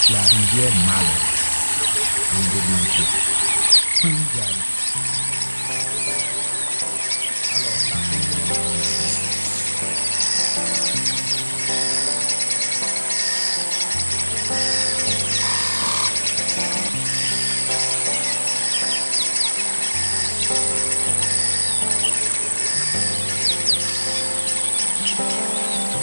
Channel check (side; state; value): both; inverted; correlation -1.00